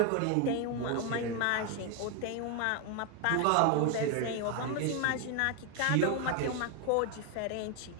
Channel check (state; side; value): different; both; correlation 0.01